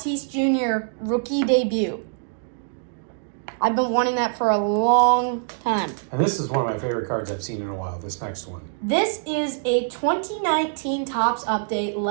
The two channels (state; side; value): silent; left; digital silence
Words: Jr. rookie debut. I've been wanting that for a long time. And this is one of my favorite cards I've seen in a while, this next one. This is a 2019 Topps update